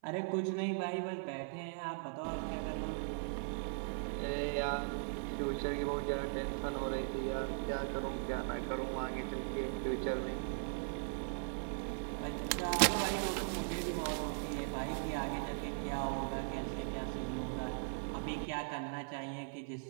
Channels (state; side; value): silent; left; 52 dB below the other